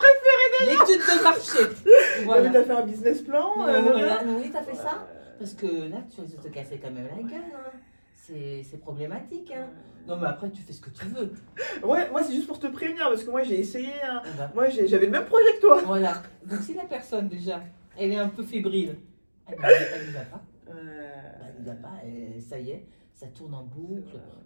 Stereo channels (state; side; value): inverted; both; correlation -1.00